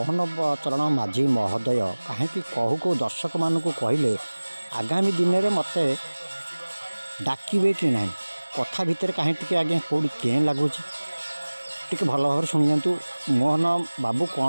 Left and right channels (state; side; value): inverted; both; correlation -1.00